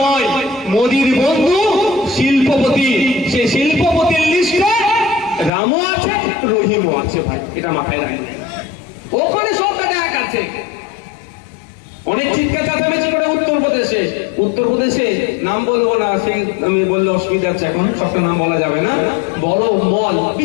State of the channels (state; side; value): drops out; right; at 5.5 s